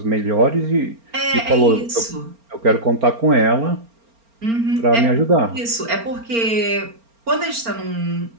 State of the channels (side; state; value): left; late; 4.4 ms